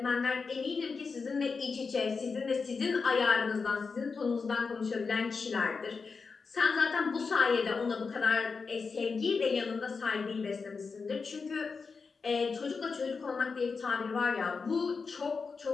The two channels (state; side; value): quieter; right; 4.9 dB